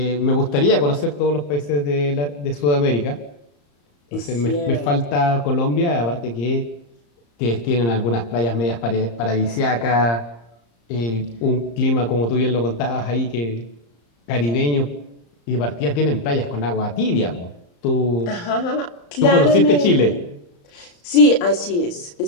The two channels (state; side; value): late; right; 34 ms